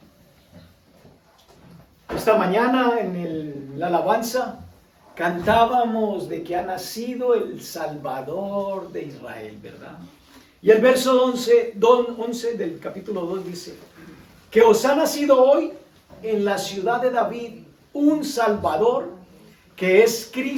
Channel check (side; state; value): both; identical; correlation 1.00